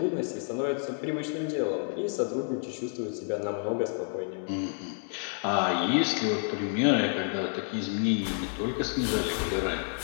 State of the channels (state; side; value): silent; right; 56 dB below the other